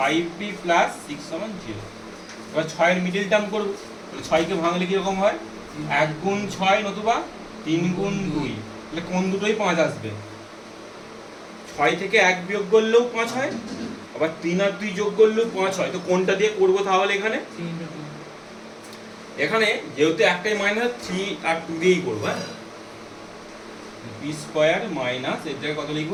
plus 6 সমান 0। এবার 6 এর মিডল টার্ম করব, তাহলে 6 কে ভাঙলে কি রকম হয় 1 গুণ 6 নতুবা 3 গুণ 2, তাহলে কোন দুটোই 5 আসবে। 6 থেকে 1 বিয়োগ করলেও 5 হয়, আবার 3 আর 2 যোগ করলেও 5 হয়। তো কোনটা দিয়ে করব তাহলে এখানে, এখানে যেহেতু একটাই মাইনাস 3 আর 2 দিয়েই করব। হ্যাঁ, p স্কয়ার মাইনাস এর জায়গায় কত লিখব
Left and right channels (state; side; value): identical; both; correlation 1.00